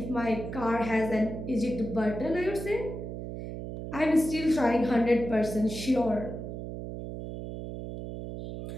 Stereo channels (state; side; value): noise; right; hum, 8 dB below the sound